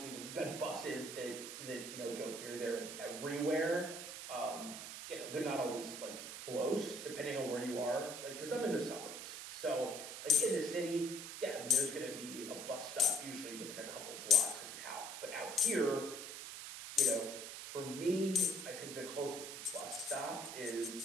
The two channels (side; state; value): right; noise; hiss, 8 dB below the sound